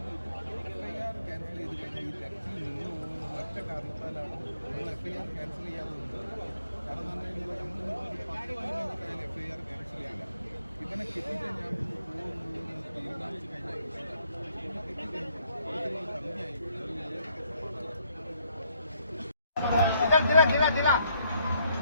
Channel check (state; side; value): inverted; both; correlation -0.70